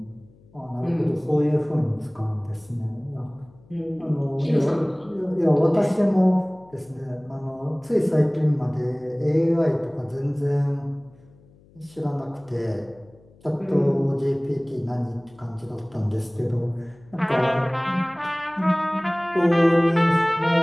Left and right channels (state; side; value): noise; left; hum, 28 dB below the sound